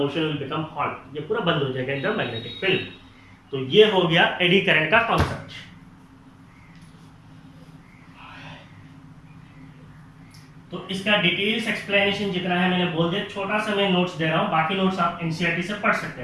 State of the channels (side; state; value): both; identical; correlation 1.00